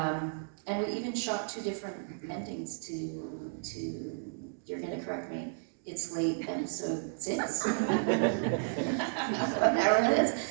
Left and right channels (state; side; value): silent; left; digital silence